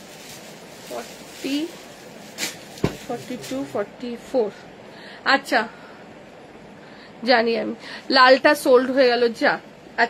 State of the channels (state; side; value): identical; both; correlation 1.00